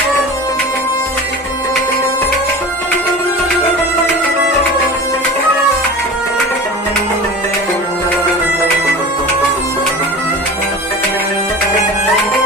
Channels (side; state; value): both; normal; correlation 0.34